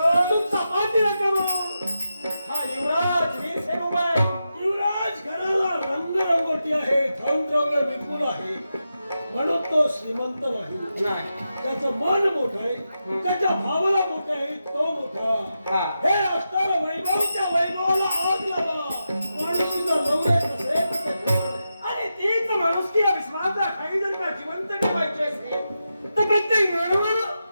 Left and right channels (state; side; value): inverted; both; correlation -0.89